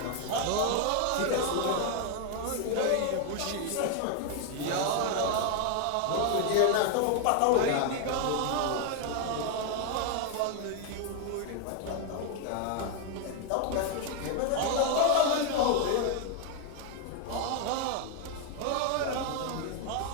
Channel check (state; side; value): different; both; correlation 0.00